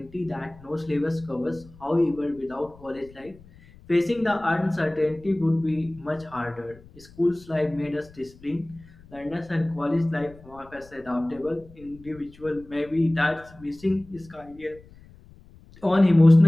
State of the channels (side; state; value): left; noise; rumble, 23 dB below the sound